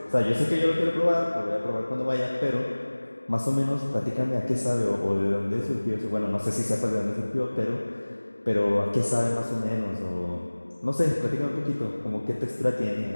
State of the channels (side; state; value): both; inverted; correlation -1.00